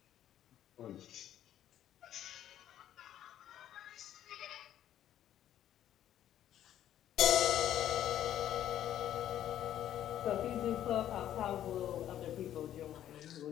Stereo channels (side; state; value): right; quieter; 11.5 dB